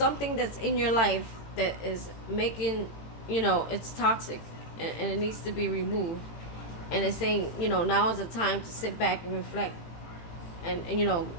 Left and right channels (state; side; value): late; right; 18 ms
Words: that's in your life that is making, it's toxic, and it needs to be removed. And it's saying, now is the time to sit back and reflect, and